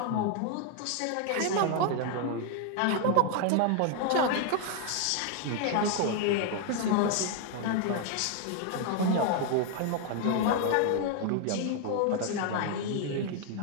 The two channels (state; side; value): different; both; correlation 0.00